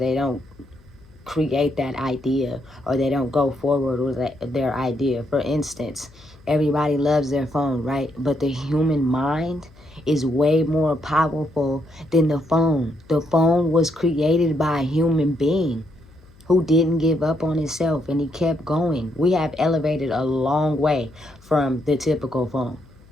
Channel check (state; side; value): noise; left; hum, 26 dB below the sound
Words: don't create that idea or they don't go forward with their idea. For instance, everybody loves their phone, right? But the human mind is way more powerful than the phone. The phone was created by a human being who didn't give up on himself, and he kept going. We have elevated a long way from the typical phone.